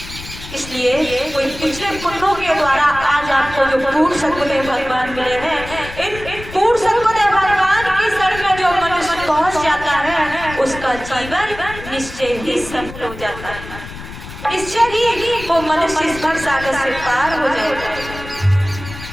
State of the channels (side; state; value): left; noise; rumble, 13 dB below the sound